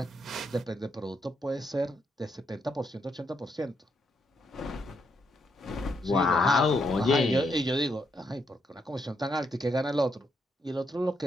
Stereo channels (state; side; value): normal; both; correlation 0.77